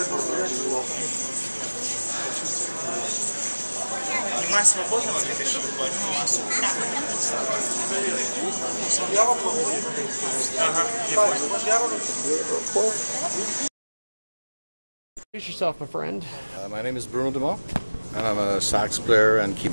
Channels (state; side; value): inverted; both; correlation -1.00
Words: Внимание свободного для пешего массу. Ага, я понял. Introduce yourself, my friend. My name is Bruno, and I'm a sax player and